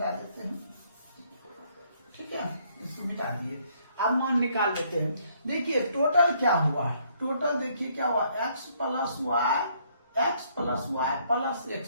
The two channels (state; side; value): inverted; both; correlation -0.67